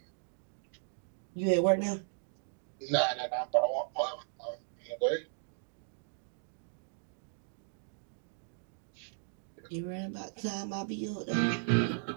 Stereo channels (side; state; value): left; silent; digital silence